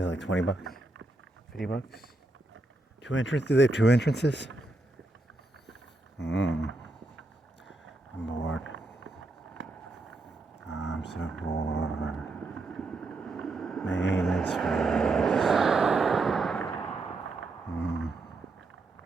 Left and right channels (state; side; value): quieter; left; 3.0 dB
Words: like $20, $50. 2 entrances? Do they have 2 entrances? I'm bored. I'm so bored. Maintenance fees.